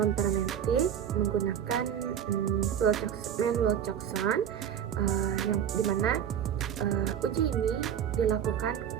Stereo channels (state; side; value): quieter; left; 9.1 dB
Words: menggunakan Mann-Wilcoxon, yang dimana uji ini dilakukan